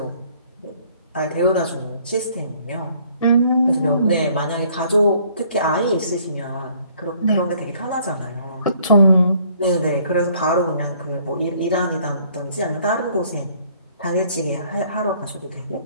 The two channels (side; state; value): both; inverted; correlation -0.61